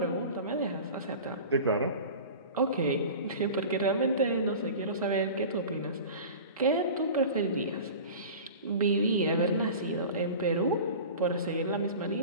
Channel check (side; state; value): both; inverted; correlation -0.37